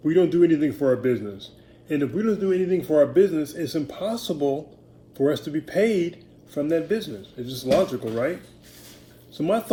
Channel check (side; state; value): both; identical; correlation 1.00